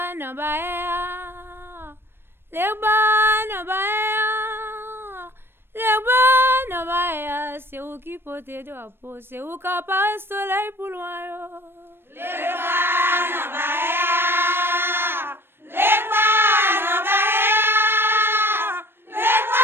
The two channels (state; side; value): late; left; 0.11 ms